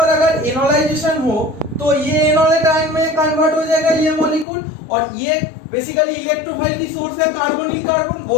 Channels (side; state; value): right; drops out; at 4.5 s